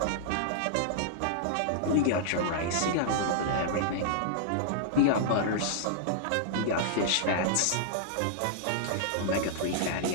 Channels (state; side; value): different; both; correlation -0.01